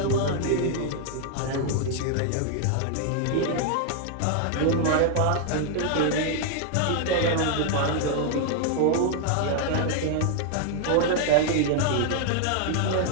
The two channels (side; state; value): both; different; correlation 0.00